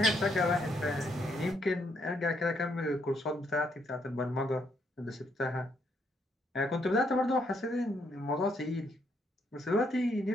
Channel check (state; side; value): normal; both; correlation 0.74